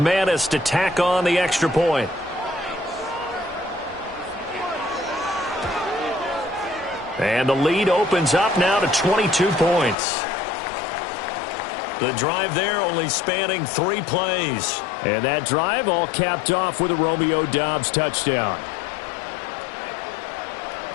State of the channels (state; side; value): drops out; right; at 10.0 s